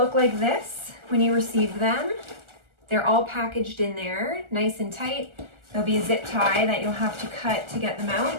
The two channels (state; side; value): late; left; 1.4 ms